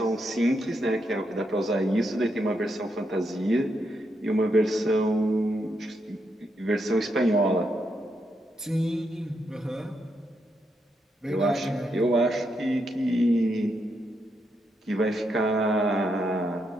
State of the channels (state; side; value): normal; both; correlation 0.81